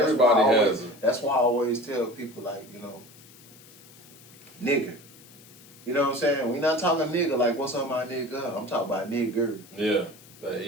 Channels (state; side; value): noise; left; hiss, 22 dB below the sound